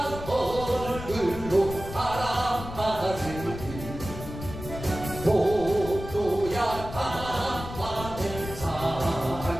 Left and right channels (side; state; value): left; noise; rumble, 10 dB below the sound